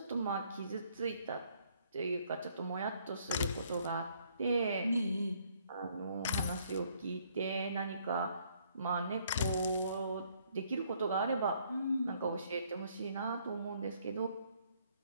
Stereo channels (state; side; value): inverted; both; correlation -0.66